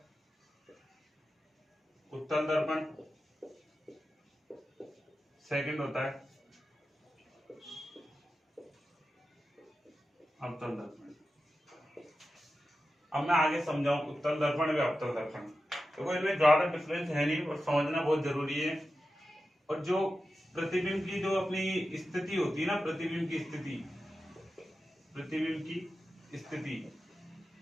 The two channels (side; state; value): both; normal; correlation 0.92